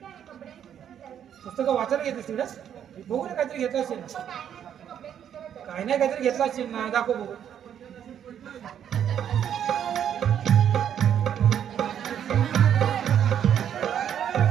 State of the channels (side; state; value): left; quieter; 9.3 dB